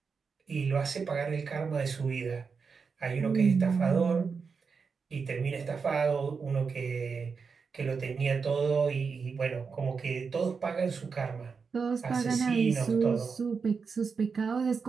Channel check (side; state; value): left; quieter; 5.4 dB